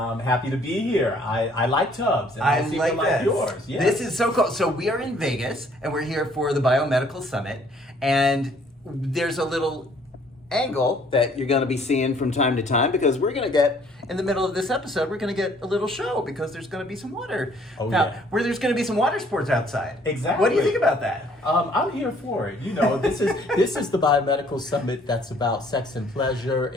happy to be here. I like tubs. And I seem to like yours. Yes. This is so cool. So we are in Vegas and we're here for the Biomedical Summit, and there's a little angle that you're going to be seeing from time to time, because we're going to get, in the middle of this episode, we're going to get a little show because there's going to be some water. Where there's going to be some water sports outside. Exactly. What do you think about that? I'm here for it. You know, this is the Biomedical Summit that's about sex and pleasure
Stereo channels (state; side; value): normal; both; correlation 0.60